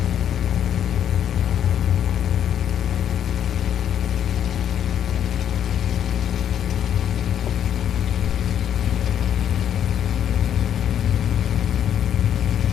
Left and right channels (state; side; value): quieter; right; 9.6 dB